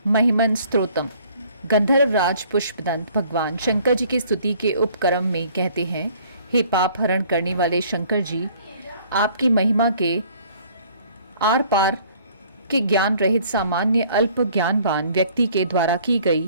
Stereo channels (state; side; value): inverted; both; correlation -0.57